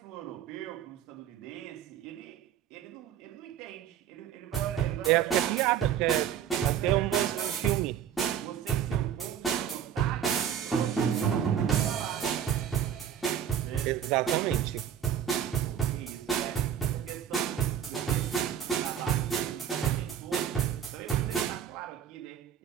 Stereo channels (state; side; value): quieter; left; 9.2 dB